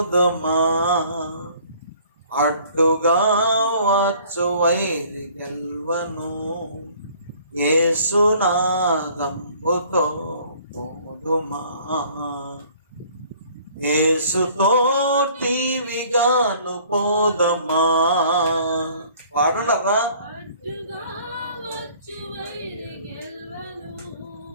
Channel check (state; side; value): inverted; both; correlation -0.55